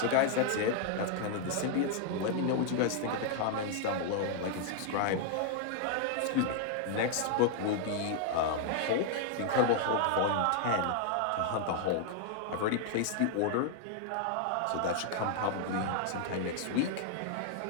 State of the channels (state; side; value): different; both; correlation 0.00